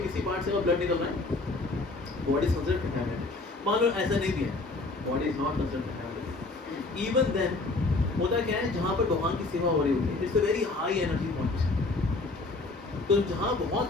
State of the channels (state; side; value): quieter; right; 3.3 dB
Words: किसी पार्ट से अगर ब्लड निकल रहा है, बॉडी इज कंसीडर्ड कंटैमिनेटेड। मान लो ऐसा नहीं भी है, body is not considered contaminated, even then होता क्या है, जहाँ पर भगवान की सेवा हो रही होती है, it's a very high energy point. तो जहाँ बहुत